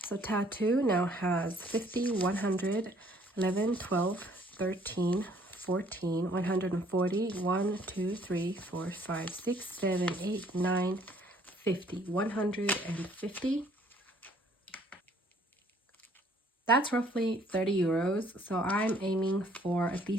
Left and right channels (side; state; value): both; normal; correlation 0.61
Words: So tattoo now has 50, 100, 11, 12, 13, 14, 140, 1, 2, 3, 4, 5, 6, 7, 8, 9, 50, 150. That's roughly 30 euros. So I'm aiming for at